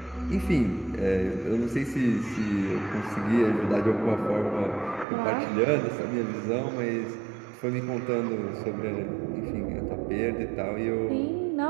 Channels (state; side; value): drops out; left; at 5.1 s